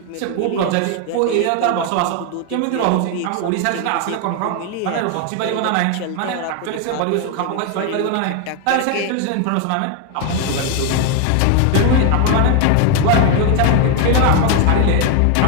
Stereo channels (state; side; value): different; both; correlation 0.01